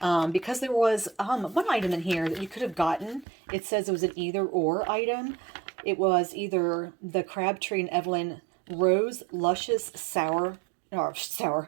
Because there was one item in here that you could have gotten. It says it was an either or item. It was either the Crabtree and Evelyn Rose Luscious Shower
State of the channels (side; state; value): left; drops out; at 3.2 s